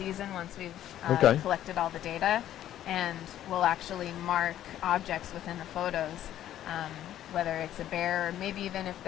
once we've Okay. collected all the data, and we'll actually mark objects within the photos, whether it's a bear or maybe even if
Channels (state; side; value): quieter; right; 12.0 dB